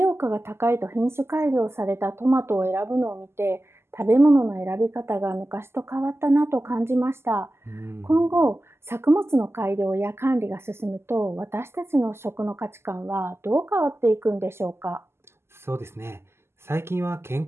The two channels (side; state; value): left; late; 0.12 ms